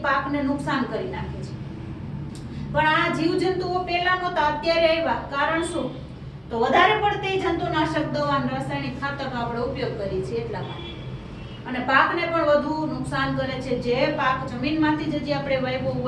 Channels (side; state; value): both; identical; correlation 1.00